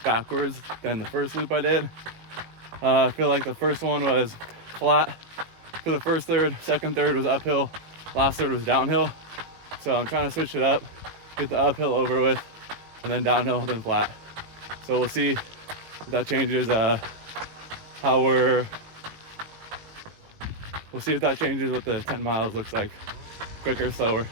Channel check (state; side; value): late; left; 18 ms